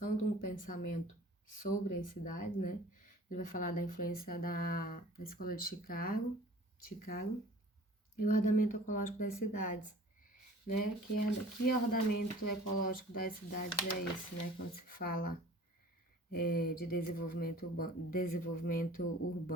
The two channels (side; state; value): both; normal; correlation 0.46